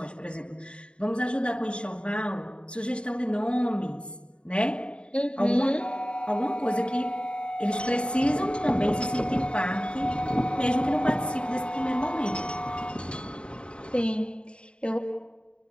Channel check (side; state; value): right; late; 0.055 ms